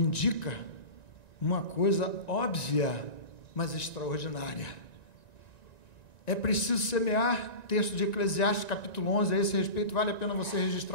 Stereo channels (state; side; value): late; right; 1.9 ms